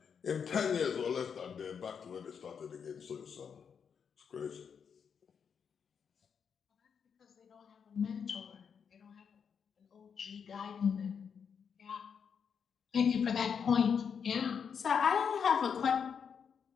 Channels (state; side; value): quieter; right; 6.8 dB